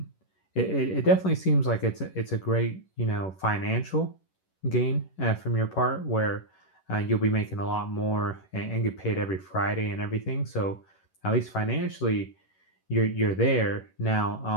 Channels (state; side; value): late; right; 11 ms